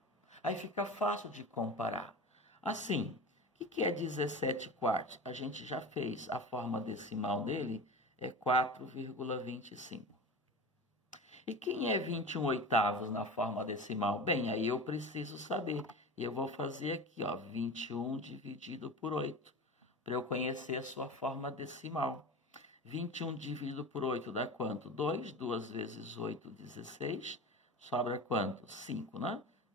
Aí fica fácil de comparar. Assim, o que é 17 quartos? A gente já fez. A forma decimal dele é 4,25. E quem é 21 oitavos na forma decimal? Bem, aí eu preciso saber. E eu vou fazer aqui, ó, 21 dividido por 8, para eu conhecer a sua forma decimal. 21 dividido por 8 dá quanto? 2. 2 vezes 8, 16. Sobra quanto? 5, né?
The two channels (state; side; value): normal; both; correlation 0.31